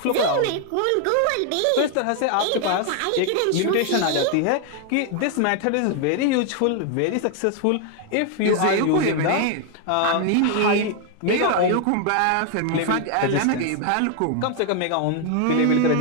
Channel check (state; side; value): different; both; correlation 0.00